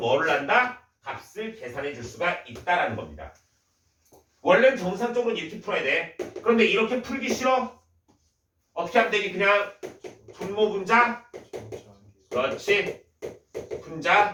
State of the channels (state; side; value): identical; both; correlation 1.00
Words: 한다? 값을 계산해 줄 수가 있다라는 겁니다. 원래는 정상적으로 이렇게 풀어야 돼. 그런데 이렇게 풀기 싫어? 어떻게 하면 되니? 그냥 분모 분자, 그렇지, 분자